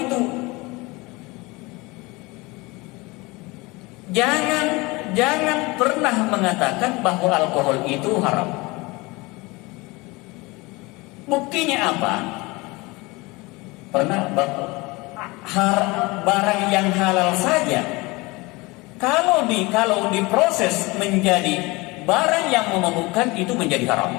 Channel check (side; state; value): right; quieter; 23.8 dB